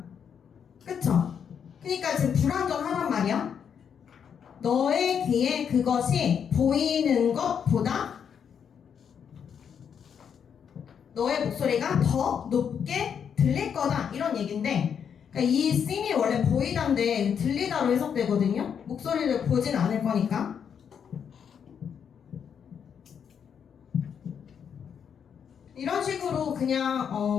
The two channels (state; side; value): quieter; right; 7.6 dB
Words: 그쵸? 그러니까 지금 불완전하단 말이야. 너의 귀에 그것이 보이는 것보다 너의 목소리가 더 높게 들릴 거다 이런 얘기인데, 그러니까 이 sing이 원래 보이다인데 들리다로 해석되거든요. 목소리를 보진 않을 거니까. 이런 식으로 그냥